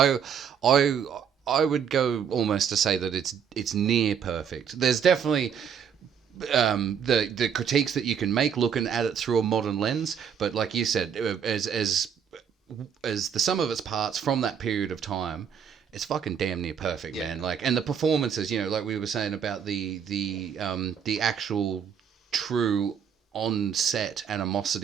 would go almost to say that it's near perfect. There's definitely the critiques that you can make looking at it through a modern lens, but like you said, as the sum of its parts from that period of time, it's fucking damn near perfect, man. Like, and the performances, like we were saying about the actual true on-set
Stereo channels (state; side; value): quieter; left; 7.6 dB